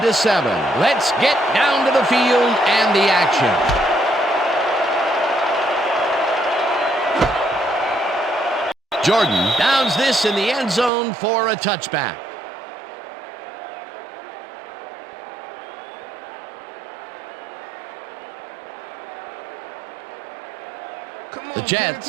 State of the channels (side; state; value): left; drops out; at 10.9 s